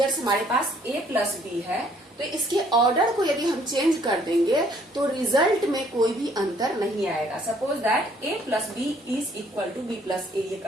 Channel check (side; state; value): both; normal; correlation 0.62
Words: हमारे पास a plus b है तो इसके order को यदि हम change कर देंगे तो रिजल्ट में कोई भी अंतर नहीं आएगा। Suppose that a plus b is equal to b plus a, ये